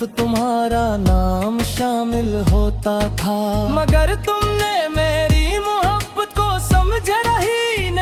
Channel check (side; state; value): both; identical; correlation 1.00